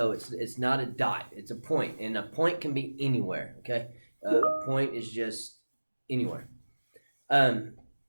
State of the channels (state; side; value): inverted; both; correlation -1.00